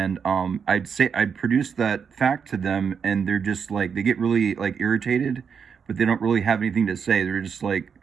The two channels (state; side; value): quieter; left; 6.6 dB